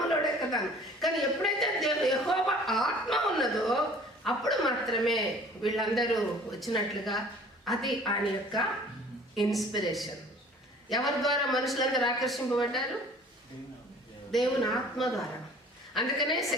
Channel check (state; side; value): normal; both; correlation 0.49